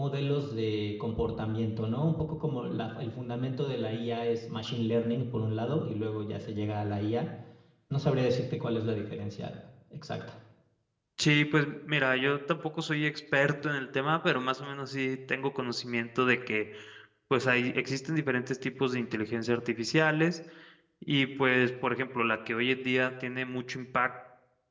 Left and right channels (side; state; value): both; identical; correlation 1.00